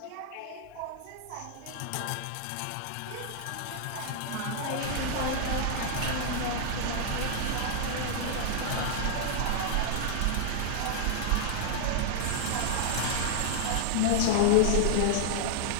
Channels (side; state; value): both; different; correlation -0.01